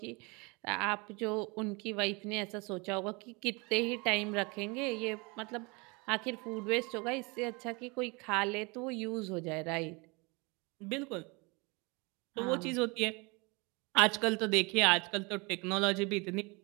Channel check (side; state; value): left; quieter; 28.3 dB